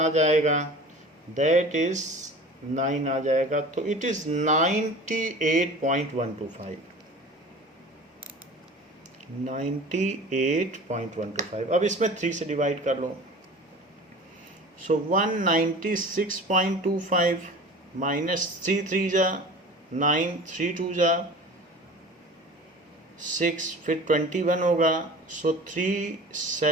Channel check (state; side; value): normal; both; correlation 0.39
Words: जाएगा, दैट इज 9 आ जाएगा, तो इट इज 98.125, 98.125। अब इसमें 3 से डिवाइड कर लो, सो 196.25 माइनस 3 3 जा 9, 3 2 जा 6, फिर 21 होगा, सो 3